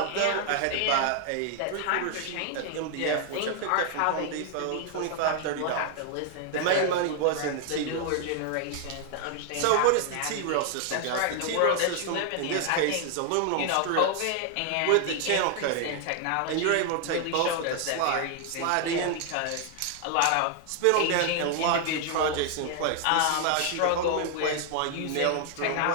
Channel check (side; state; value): both; different; correlation 0.00